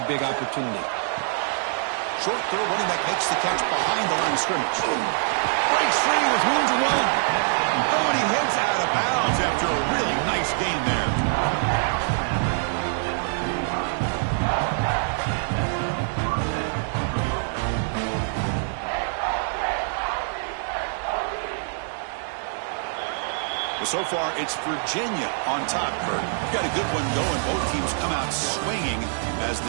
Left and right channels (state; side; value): silent; left; digital silence